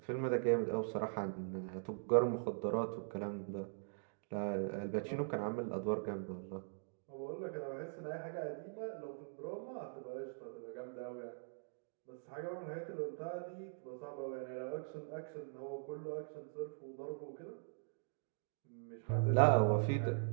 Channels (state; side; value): silent; left; digital silence